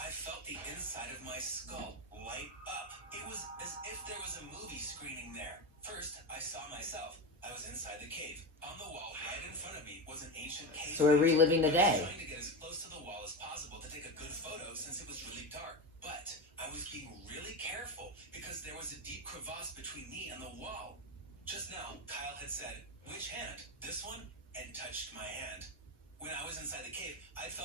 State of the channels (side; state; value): both; normal; correlation 0.18